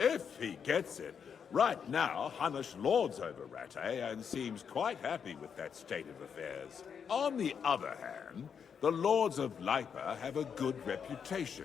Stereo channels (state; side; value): quieter; right; 7.1 dB